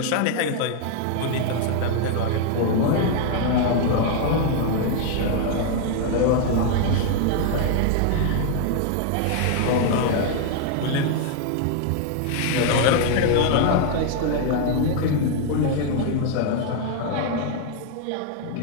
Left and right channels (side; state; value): both; different; correlation 0.00